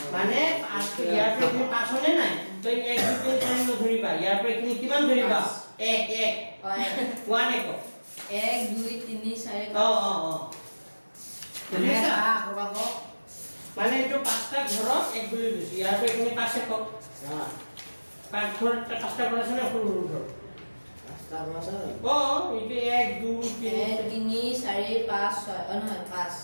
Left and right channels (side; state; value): both; inverted; correlation -1.00